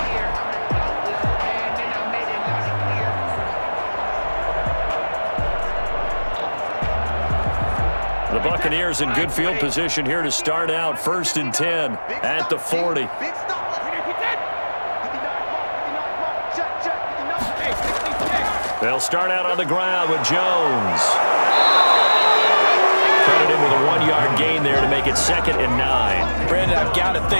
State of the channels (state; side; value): inverted; both; correlation -1.00